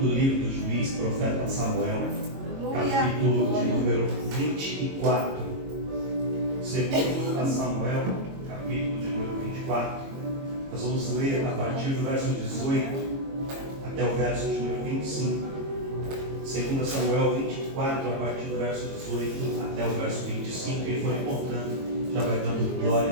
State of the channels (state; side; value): late; left; 22 ms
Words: segundo livro do juiz, profeta Samuel, capítulo de número 24. Segundo a Samuel, capítulo de número 24, nós vamos ler a partir do verso 18 até o verso de número 25. Segundo Samuel 24, a partir do verso 18 até o verso 25. Quem for encontrando, já vai dando glória